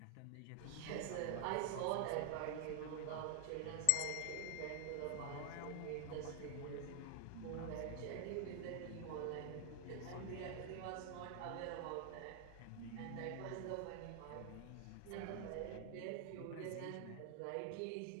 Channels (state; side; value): different; both; correlation 0.00